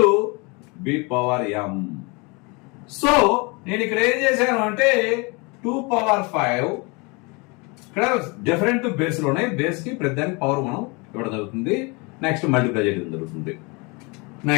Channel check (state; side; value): quieter; right; 28.8 dB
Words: B power M. So నేను ఇక్కడ ఏం చేశాను అంటే 2 పవర్ 5 ఇక్కడ డిఫరెంట్ బేస్లు ఉన్నాయి. బేస్ కి ప్రతి దానికి పవర్ మనం ఇవ్వడం జరుగుతుంది. నెక్స్ట్ మల్టిప్లై చేయడం జరుగుతుంది.